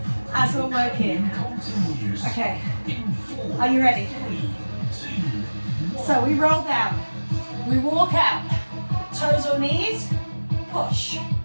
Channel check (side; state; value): both; inverted; correlation -1.00